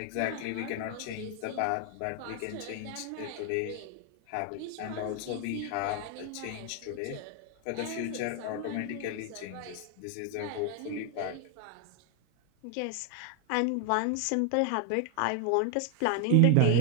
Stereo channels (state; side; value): different; both; correlation 0.00